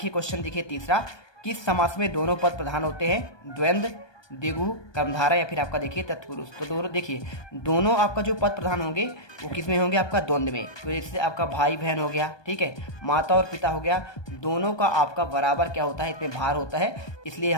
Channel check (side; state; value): right; late; 1.2 ms